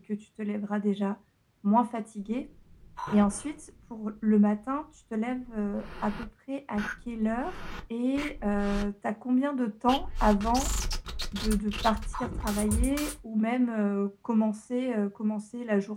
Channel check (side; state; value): both; identical; correlation 1.00